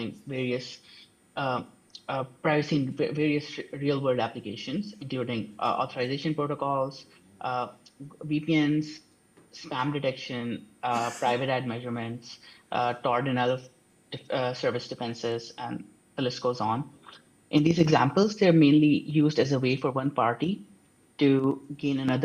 various privacy in various real-world applications, including authorization protocols, VPNs, spam detection, private ad measurements, Tor denial of service defenses, and the list goes on. In these examples, they're mainly used as a way for one party to gain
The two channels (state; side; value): identical; both; correlation 1.00